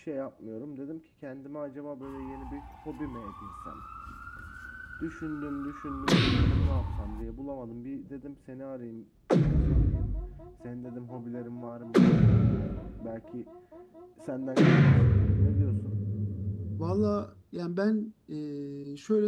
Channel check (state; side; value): identical; both; correlation 1.00